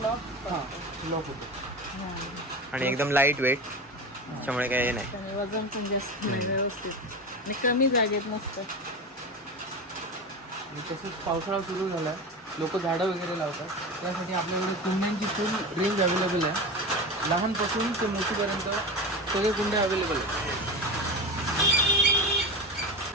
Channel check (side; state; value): both; normal; correlation 0.25